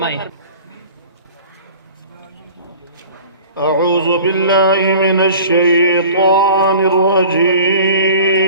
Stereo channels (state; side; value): inverted; both; correlation -0.43